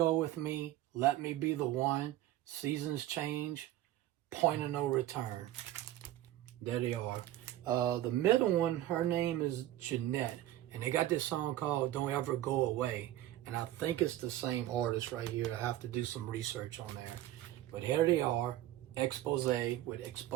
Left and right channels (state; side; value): quieter; left; 14.0 dB